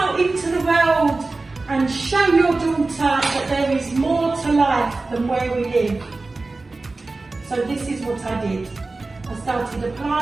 into the world and show your daughter that there is more to life than where we live." So this is what I did. I started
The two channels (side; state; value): left; quieter; 3.5 dB